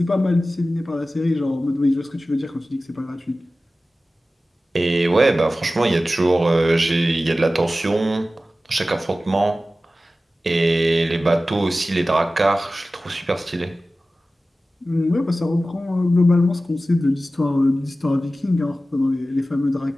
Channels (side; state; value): both; normal; correlation 0.95